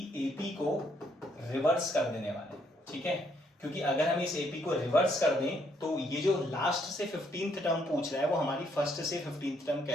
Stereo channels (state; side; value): normal; both; correlation 0.71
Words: एपी को रिवर्स कर देने वाले हैं, ठीक है। क्योंकि अगर हम इस एपी को रिवर्स कर दें तो ये जो लास्ट से 15th टर्म पूछ रहा है वो हमारी फर्स्ट से 15th टर्म